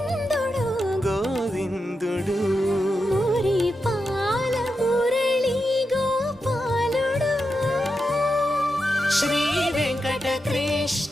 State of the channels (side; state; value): both; normal; correlation 0.88